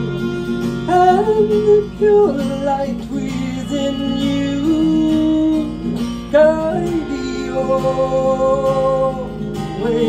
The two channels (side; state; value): both; identical; correlation 1.00